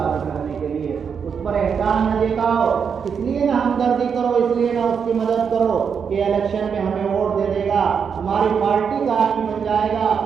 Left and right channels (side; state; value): left; quieter; 6.7 dB